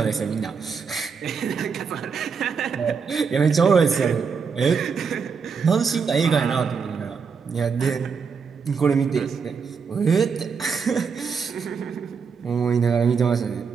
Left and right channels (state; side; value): quieter; left; 5.7 dB